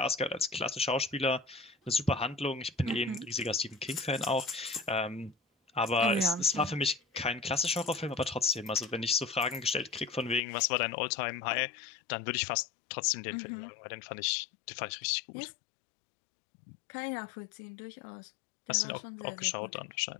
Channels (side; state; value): right; drops out; at 10.4 s